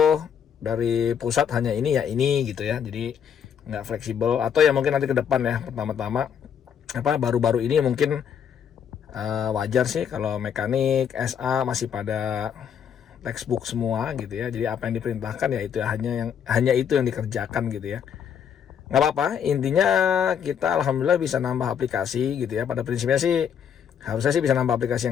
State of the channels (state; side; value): quieter; right; 8.1 dB